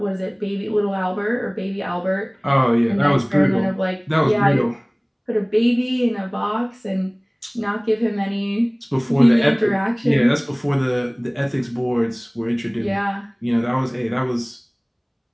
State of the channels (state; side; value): identical; both; correlation 1.00